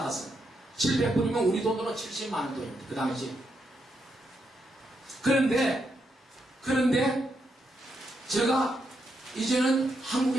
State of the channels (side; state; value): both; normal; correlation 0.81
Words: 700불이면 우리 돈으로 70만 원 돈입니다. 그 당시. 그런데 제가 이제는